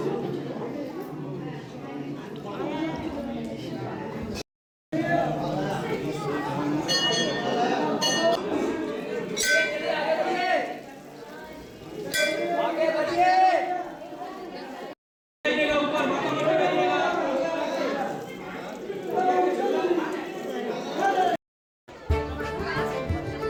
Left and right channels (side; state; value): both; identical; correlation 1.00